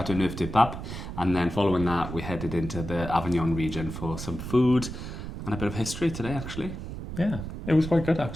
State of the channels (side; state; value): right; noise; rumble, 8 dB below the sound